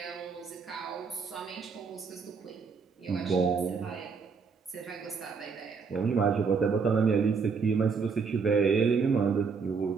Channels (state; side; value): quieter; left; 5.4 dB